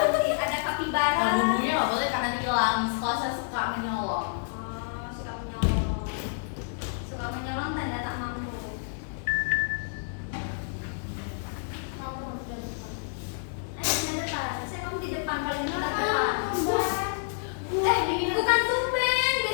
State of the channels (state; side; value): silent; right; digital silence